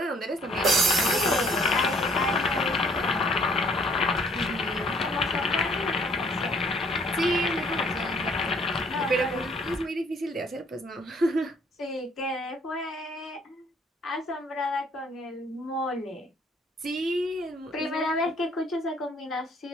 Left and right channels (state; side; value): normal; both; correlation 0.61